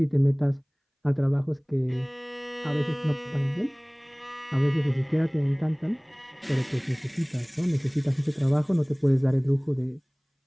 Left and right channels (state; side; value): identical; both; correlation 1.00